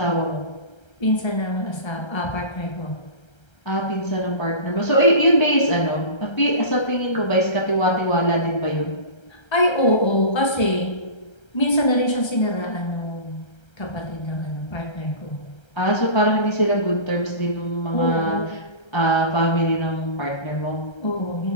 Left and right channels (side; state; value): right; late; 1.3 ms